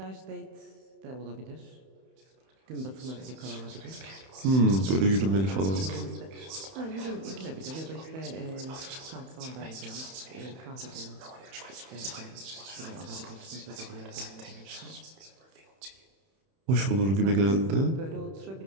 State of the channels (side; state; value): left; late; 31 ms